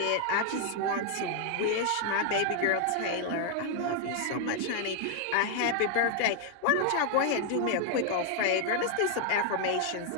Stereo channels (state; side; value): different; both; correlation 0.00